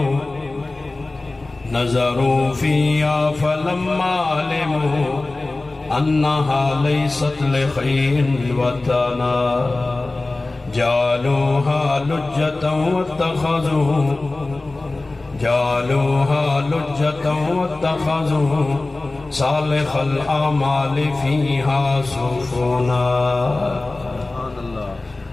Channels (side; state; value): right; quieter; 3.1 dB